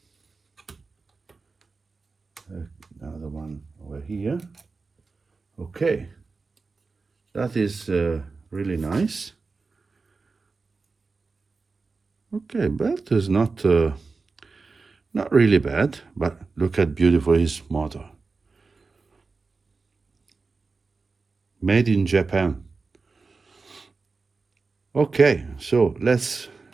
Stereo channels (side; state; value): left; quieter; 4.2 dB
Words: Another one over here. Okay, that is really nice. Okay, but it's not really bad. But look at beautiful his motor. Made in Japan. Okay, so let's